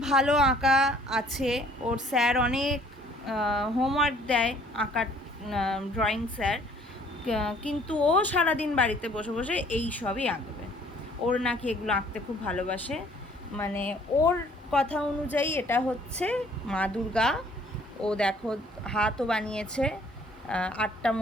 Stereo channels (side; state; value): both; normal; correlation 0.58